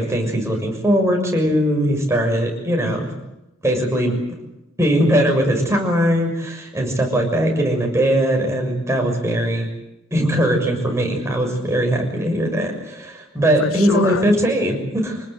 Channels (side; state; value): both; normal; correlation 0.68